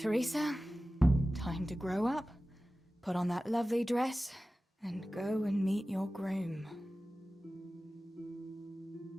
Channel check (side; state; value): both; normal; correlation 0.96